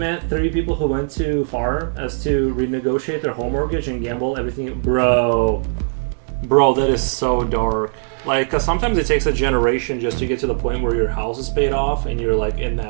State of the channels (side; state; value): left; silent; 66 dB below the other